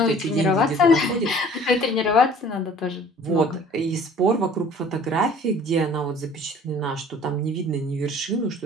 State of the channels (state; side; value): normal; both; correlation 0.50